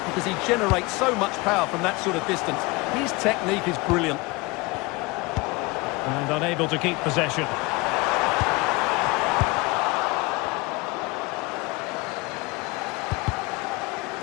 because he generates so much power from that sort of distance. His technique is brilliant. And unable to keep possession.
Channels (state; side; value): quieter; right; 24.6 dB